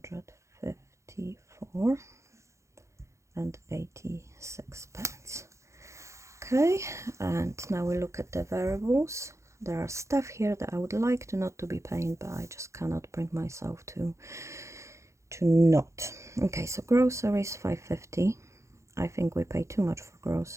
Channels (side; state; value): left; late; 0.14 ms